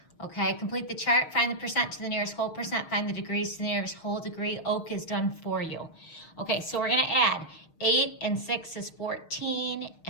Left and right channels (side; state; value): right; late; 6.5 ms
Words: Okay, complete the chart, find the percent to the nearest whole percent, find the degrees to the nearest whole degree. Oak is done for you. Okay, so we're gonna add 8 and 6 is 14